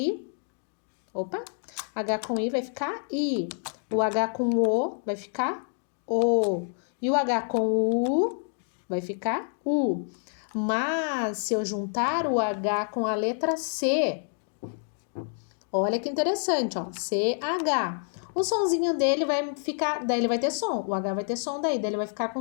Opa. H com I vai ficar I. O H com O vai ficar O. E o H com U vai ficar U. Mas, se eu juntar o H com a letra C, olha que interessante, ó. CH. O sonzinho dele vai ficar, daí ele vai ter som. O H vai ter som daí ele vai ficar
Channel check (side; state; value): right; silent; 59 dB below the other